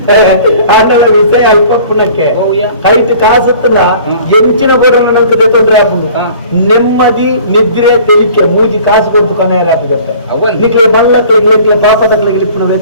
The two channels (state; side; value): inverted; both; correlation -0.49